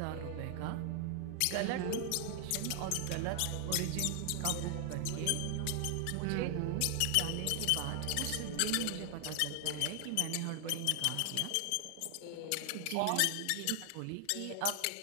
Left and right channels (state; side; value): different; both; correlation 0.00